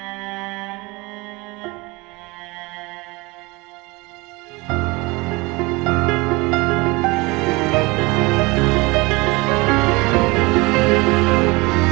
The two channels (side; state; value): left; quieter; 24.5 dB